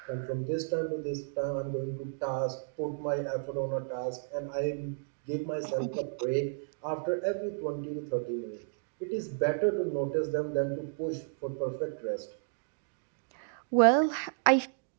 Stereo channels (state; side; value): silent; left; digital silence